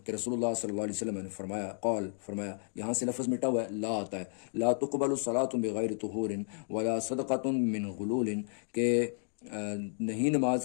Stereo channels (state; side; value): silent; right; digital silence